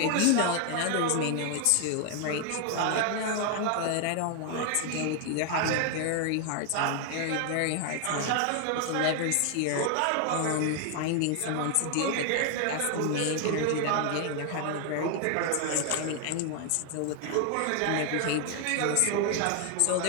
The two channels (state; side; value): different; both; correlation 0.00